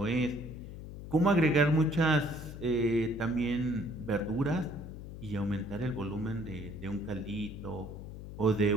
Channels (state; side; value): noise; left; hum, 11 dB below the sound